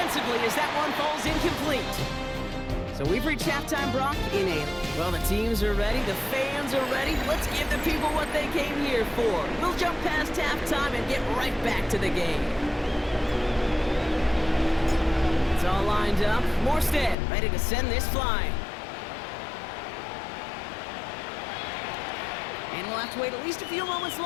as that one falls incomplete. So we've reached halftime, Brock, in a... Well, the teams are ready, the fans are ready. Let's give the people what they came here for. We'll jump past halftime and get right back to the game. It's all lined up. Morstead ready to send this flying. And we'll have to wait at least a few moments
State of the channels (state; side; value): drops out; right; at 17.2 s